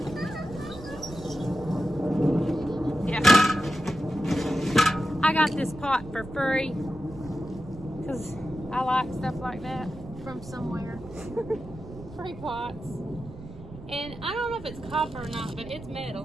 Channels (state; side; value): noise; right; rumble, 15 dB below the sound